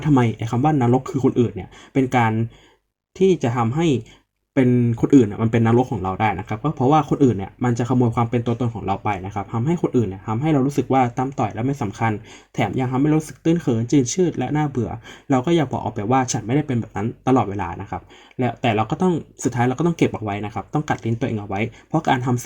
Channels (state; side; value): identical; both; correlation 1.00